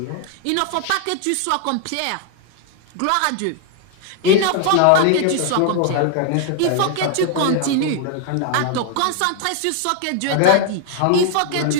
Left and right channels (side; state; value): both; different; correlation 0.00